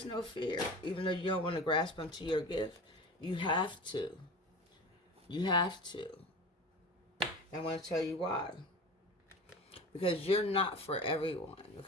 no fear. Even though you don't want to grasp onto your gift, you have to. You have to. I want to tell you why. Because you're not for everyone,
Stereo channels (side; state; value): both; normal; correlation 0.34